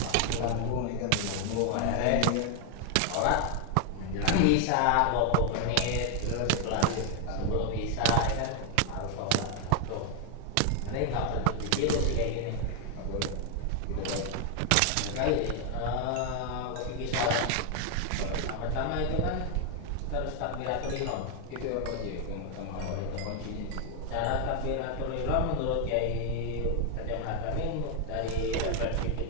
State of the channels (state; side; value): different; both; correlation 0.00